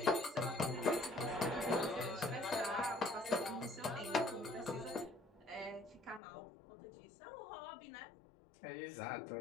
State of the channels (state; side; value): drops out; right; at 6.2 s